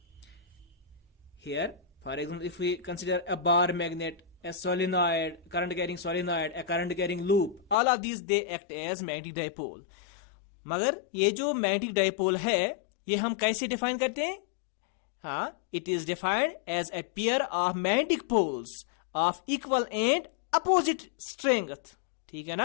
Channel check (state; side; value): drops out; right; at 7.8 s